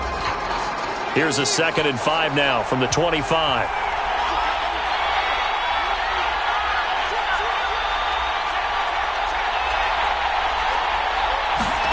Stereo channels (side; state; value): both; identical; correlation 1.00